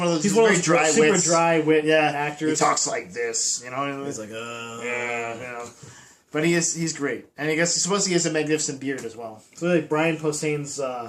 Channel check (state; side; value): identical; both; correlation 1.00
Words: of those. He's one of very those dry super wits. dry wit Yeah, actors. He talks like this, you know. He's like, yeah, you know. But he's great, and I guess supposedly he has a magnificent beard as well. So like Brian Posehn's